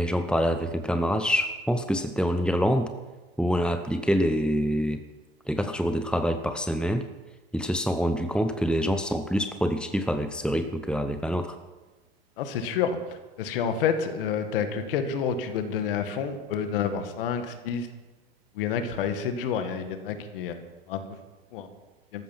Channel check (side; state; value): both; normal; correlation 0.65